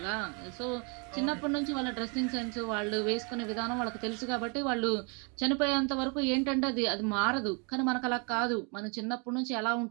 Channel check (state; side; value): quieter; left; 34.4 dB